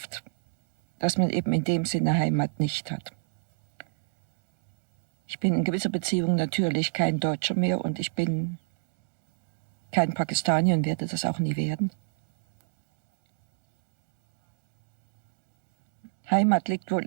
dass man eben in dem Sinne Heimat nicht hat. Ich bin in gewisser Beziehung natürlich kein Deutscher mehr und ich bin kein Pakistanier und werde das auch nie werden. Heimat liegt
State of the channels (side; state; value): left; silent; digital silence